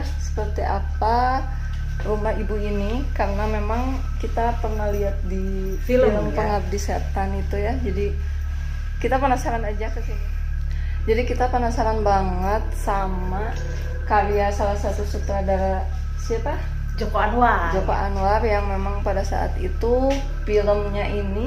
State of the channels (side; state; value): both; identical; correlation 1.00